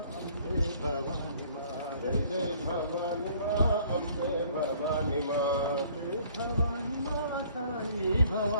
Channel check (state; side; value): inverted; both; correlation -0.57